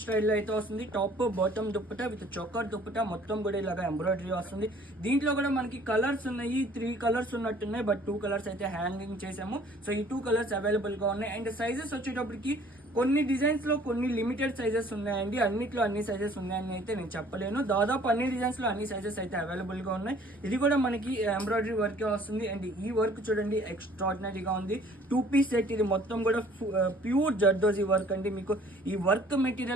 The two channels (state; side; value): normal; both; correlation 0.55